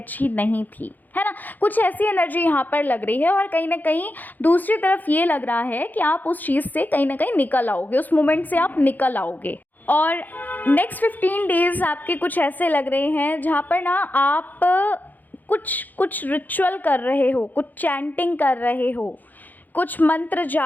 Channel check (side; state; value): right; late; 0.084 ms